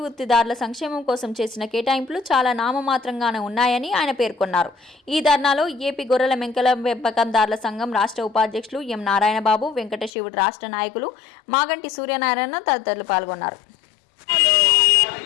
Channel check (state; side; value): drops out; right; at 10.1 s